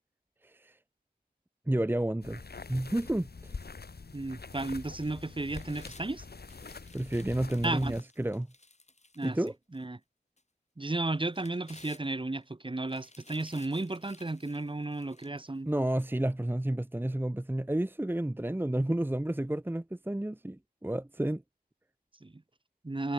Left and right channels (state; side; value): normal; both; correlation 0.88